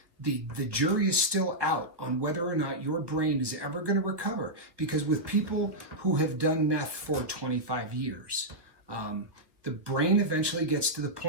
the jury is still out on whether or not your brain is ever going to recover. Because with people who have done meth for 25 years, the brain eventually gets to the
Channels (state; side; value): late; left; 1.1 ms